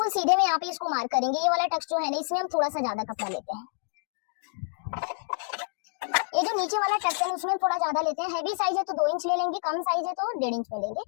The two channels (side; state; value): right; silent; digital silence